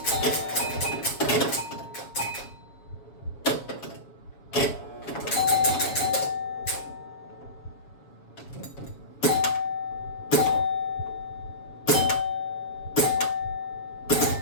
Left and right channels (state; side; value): late; right; 7.1 ms